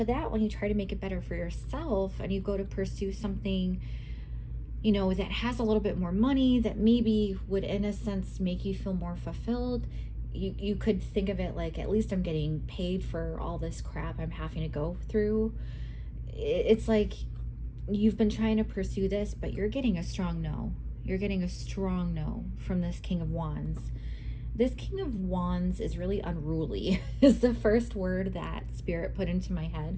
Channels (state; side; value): identical; both; correlation 1.00